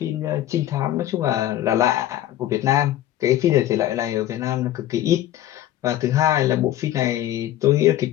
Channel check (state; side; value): quieter; right; 13.3 dB